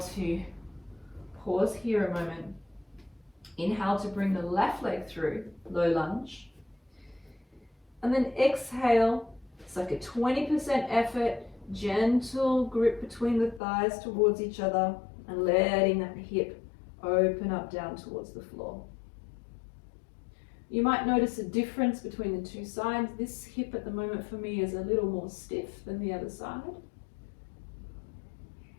to pause here a moment. Inhale to bring the left leg through, low lunge. And then exhale, it's like a 20% effort, gentle grip between the thighs towards each other and letting that hip open up down towards the floor. You might notice a difference between the 2 sides. This hip at the moment for me is a little more stiff than the other side.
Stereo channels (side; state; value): right; drops out; at 13.6 s